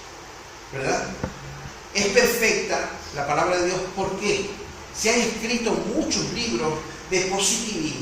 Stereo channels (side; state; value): both; identical; correlation 1.00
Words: ¿verdad? Es perfecta la palabra de Dios. ¿Por qué? Se han escrito muchos libros de